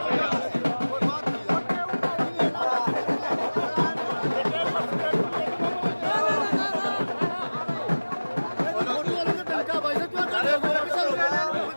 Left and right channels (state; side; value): inverted; both; correlation -1.00